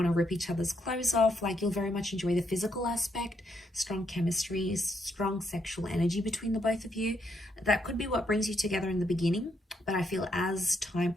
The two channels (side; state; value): both; normal; correlation 0.76